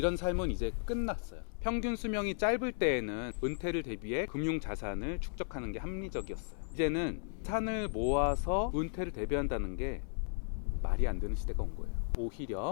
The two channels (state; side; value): silent; right; digital silence